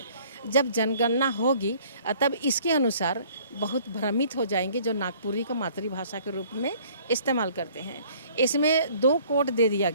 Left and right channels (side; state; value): both; inverted; correlation -0.56